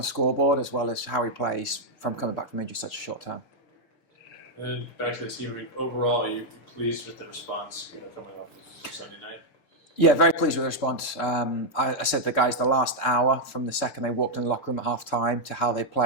scoreboard, as well as how he plays from coming back from injury such a short time. And then back to the team. I mean, overall, you pleased with the response, coming off of Sunday night? Yeah, very pleased with the response. I said to the guys the last hour from the second they walked in the locker room at half time to how they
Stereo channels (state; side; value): late; right; 6.8 ms